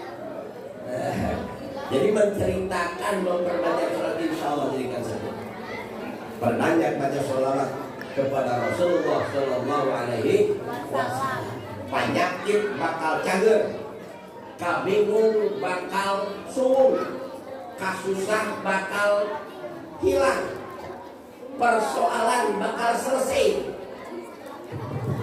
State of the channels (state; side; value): identical; both; correlation 1.00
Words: Jadi menceritakan memperbanyak sholat insya Allah jadikan sebut. Perbanyak baca sholawat kepada Rasulullah sallallahu alaihi wasallam. Penyakit bakal cager, kabingung bakal sung. kasusah bakal hilang, persoalan bakal selesai.